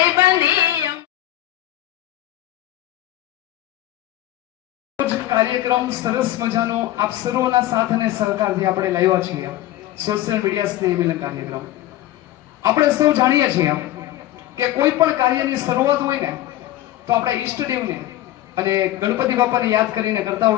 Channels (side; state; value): right; quieter; 14.5 dB